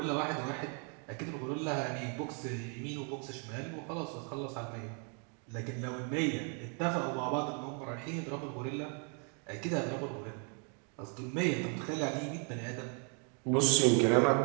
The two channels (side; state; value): left; quieter; 39.4 dB